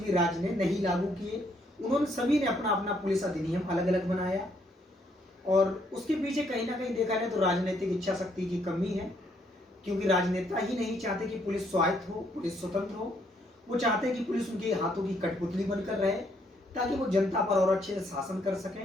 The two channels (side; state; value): both; normal; correlation 0.71